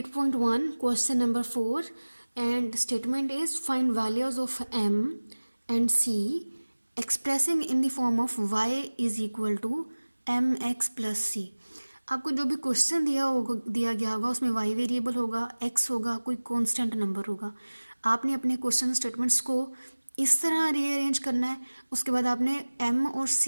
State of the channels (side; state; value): both; inverted; correlation -1.00